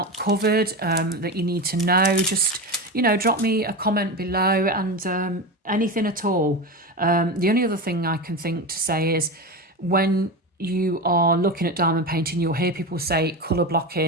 covered that you need to know, just drop me a comment below, and anything at all. The only other thing I can think to say is, when you are looking at diamond painting, you'll hear people say colour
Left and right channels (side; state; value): both; normal; correlation 0.21